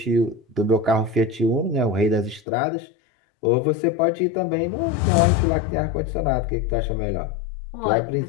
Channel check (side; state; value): right; drops out; at 2.4 s